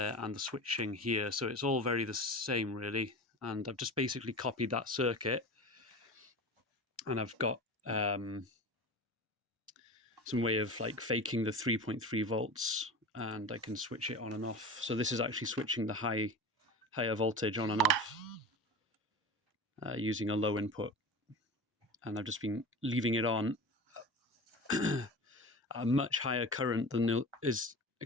and the switching here. So it's all very the same, really. And I've just basically copied that circuit, and I've got some way of like faking the 3.3 volts, and I can switch it on and off. So this is actually switching the higher voltage on and off using a low input. And I've just been leaving it on a much higher current than is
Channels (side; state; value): both; normal; correlation 0.31